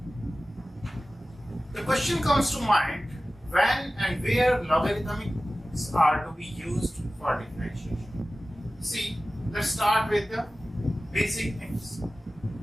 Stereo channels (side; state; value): both; normal; correlation 0.96